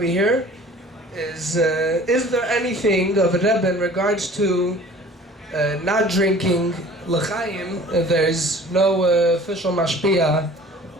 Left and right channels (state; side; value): normal; both; correlation 0.47